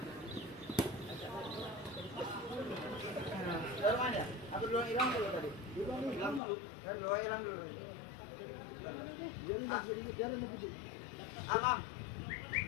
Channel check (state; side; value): drops out; right; at 6.4 s